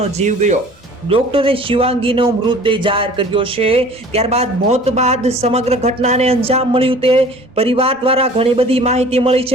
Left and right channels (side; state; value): both; normal; correlation 0.47